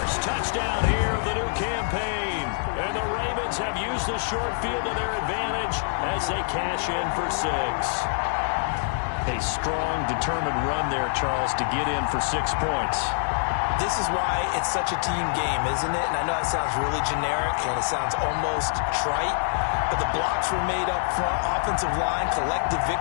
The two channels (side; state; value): right; silent; digital silence